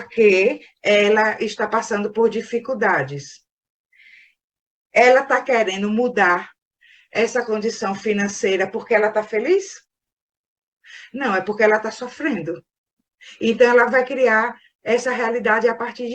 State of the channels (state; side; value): identical; both; correlation 1.00